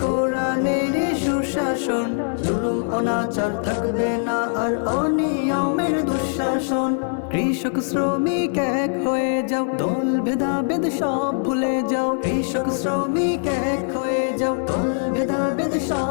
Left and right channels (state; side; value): silent; right; 56 dB below the other